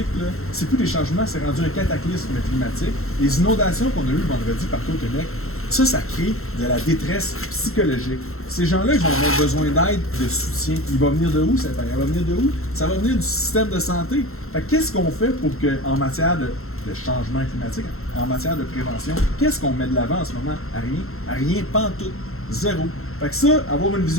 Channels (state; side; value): late; right; 0.62 ms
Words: là. C'est plus des changements, c'est rendu un cataclysme climatique. Les inondations qu'on a eues vendredi partout au Québec, ça crée de la détresse psychologique. Ces gens-là, ils vont avoir besoin d'aide, de soutien. Il va venir de où, cette aide? Il va venir de où? Ça va venir du système de santé. Fait qu'est-ce qu'on fait pour que, en matière de changement climatique, en matière de prévention, qu'est-ce qu'on met de l'avant en ce moment? À rien. À rien, pantoute. Zéro. Fait que ça, avoir une